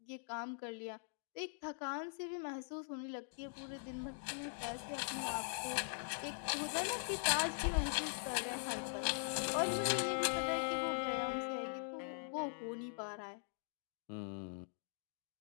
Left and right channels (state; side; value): silent; right; digital silence